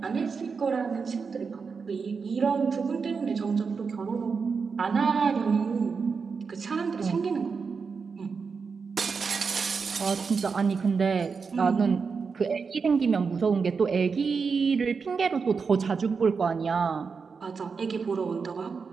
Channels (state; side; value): quieter; left; 5.3 dB